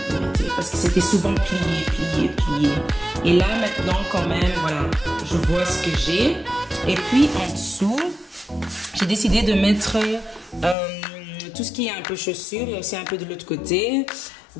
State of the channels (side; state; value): right; drops out; at 10.8 s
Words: vérité parce que c'était souvent plié. Et là maintenant quand même voilà, je vois ce que j'ai. Et puis en dessous j'ai décidé de mettre tout ce qui est un peu chaussures. Il y a aussi un peu de l'autre côté.